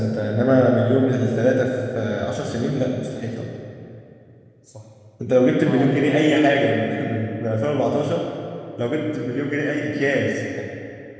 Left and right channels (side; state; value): both; identical; correlation 1.00